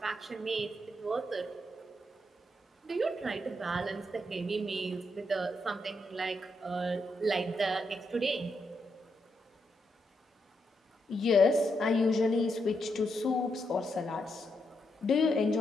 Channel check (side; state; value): both; normal; correlation 0.81